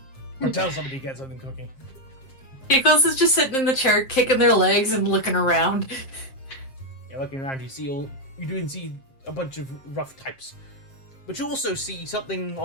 or tell somebody to get something cooking. Giggles is just sitting in the chair, kicking their legs and looking around. You're looking around. You do see a bunch of rough types, but you also see something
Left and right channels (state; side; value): late; right; 7.5 ms